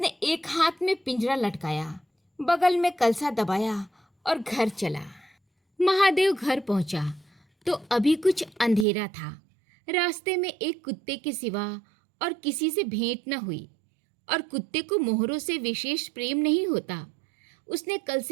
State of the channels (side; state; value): left; drops out; at 8.8 s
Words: एक हाथ में पिंजरा लटकाया, बगल में कलसा दबाया और घर चला। महादेव घर पहुंचा तो अभी कुछ अंधेरा था। रास्ते में एक कुत्ते के सिवा और किसी से भेंट न हुई, और कुत्ते को मोहरों से विशेष प्रेम नहीं होता। उसने